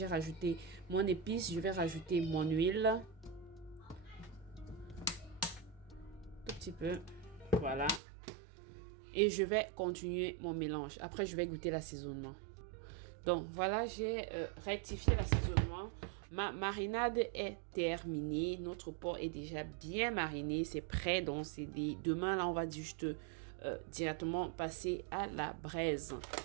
rajouté mon épice. Je vais rajouter mon huile. Tout petit peu. Voilà. Et je vais continuer mon mélange. Après, je vais goûter l'assaisonnement. Donc, voilà, j'ai rectifié l'assaisonnement. Ma marinade est terminée. Notre porc est déjà bien mariné. C'est prêt. Donc, demain, là, on va juste directement passer à la braise.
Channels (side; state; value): left; drops out; at 8.0 s